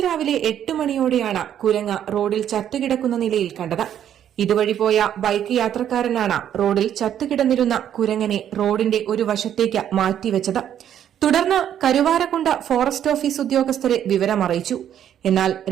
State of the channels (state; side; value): quieter; left; 10.1 dB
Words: രാവിലെ 8 മണിയോടെയാണ് കുരങ്ങ് റോഡിൽ ചത്തുകിടക്കുന്ന നിലയിൽ കണ്ടത്. ഇതുവഴി പോയ ബൈക്ക് യാത്രക്കാരനാണ് റോഡിൽ ചത്തുകിടന്നിരുന്ന കുരങ്ങനെ റോഡിന്റെ ഒരു വശത്തേക്ക് മാറ്റിവെച്ചത്. തുടർന്ന് കരുവാരക്കുണ്ട് ഫോറസ്റ്റ് ഓഫീസ് ഉദ്യോഗസ്ഥരെ വിവരമറിയിച്ചു. എന്നാൽ